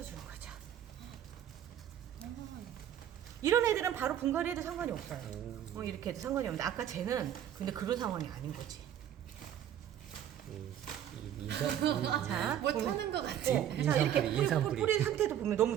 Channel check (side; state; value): left; quieter; 10.4 dB